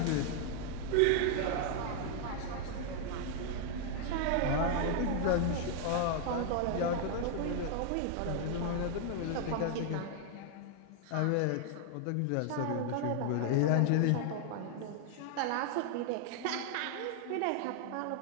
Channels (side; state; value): both; different; correlation 0.00